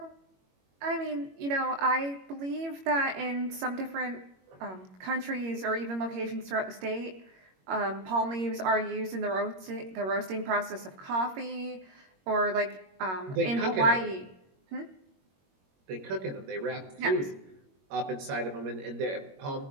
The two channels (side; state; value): left; late; 21 ms